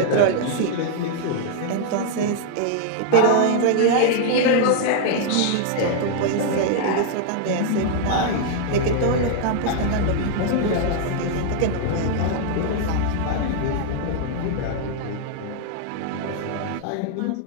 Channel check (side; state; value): both; different; correlation -0.01